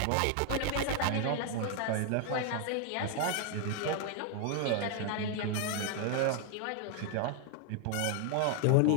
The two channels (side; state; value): both; different; correlation 0.00